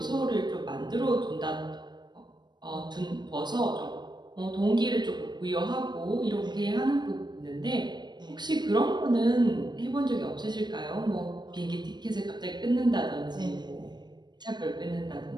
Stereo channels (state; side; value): late; left; 0.21 ms